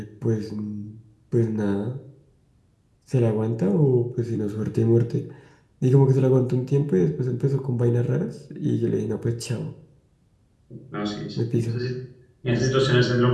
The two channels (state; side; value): identical; both; correlation 1.00